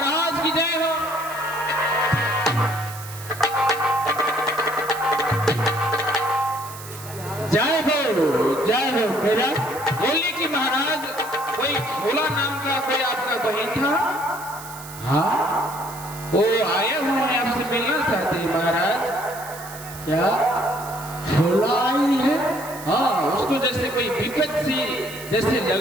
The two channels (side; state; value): right; noise; hiss, 15 dB below the sound